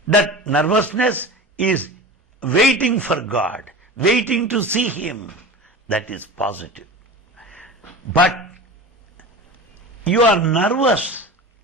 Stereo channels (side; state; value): both; normal; correlation 0.32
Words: That nervousness is waiting for God, waiting to see Him. That is positive. But you are nervous